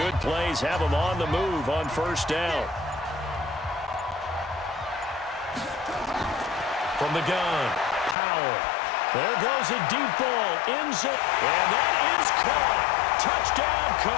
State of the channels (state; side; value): drops out; right; at 8.2 s